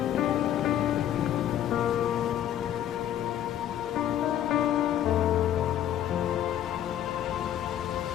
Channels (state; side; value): quieter; right; 11.3 dB